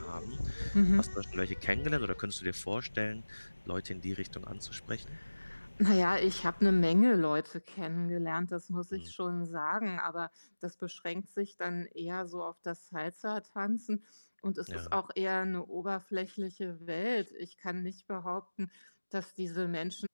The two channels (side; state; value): both; inverted; correlation -1.00